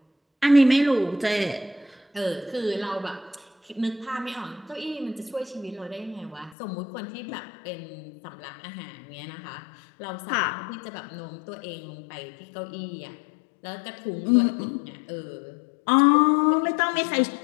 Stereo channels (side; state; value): right; drops out; at 6.6 s